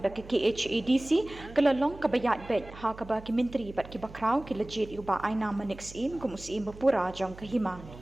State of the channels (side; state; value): right; noise; hum, 17 dB below the sound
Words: da ke KHADC kelalong kebayat bet ha keba ki menteri bat ki bakrau ki legit uba aina manik sim kum USI Bapura jang ke Himam.